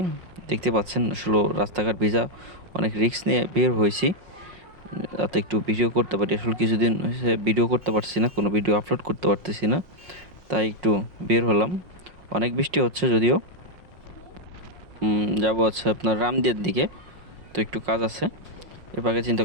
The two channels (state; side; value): late; left; 5.5 ms